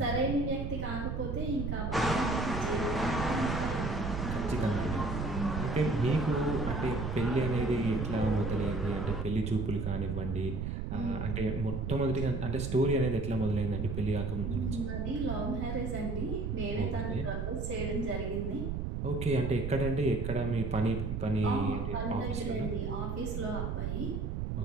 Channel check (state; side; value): noise; right; rumble, 2 dB below the sound